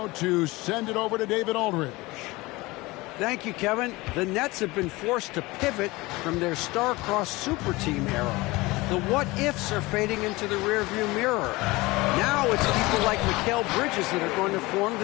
to send it over to David Aldridge. Thank you, Kevin. The Nets have been forced to pivot from their star-crossed super team era. The what-ifs are fading into the rearview mirror. Now it's people like Mikal Bridges that are going to form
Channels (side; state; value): right; quieter; 21.7 dB